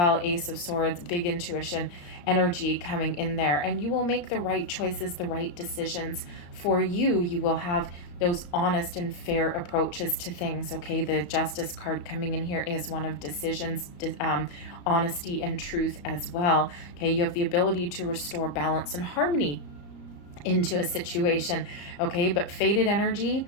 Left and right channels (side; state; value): right; late; 34 ms